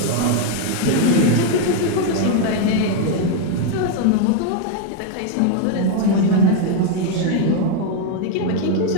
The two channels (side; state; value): both; different; correlation 0.00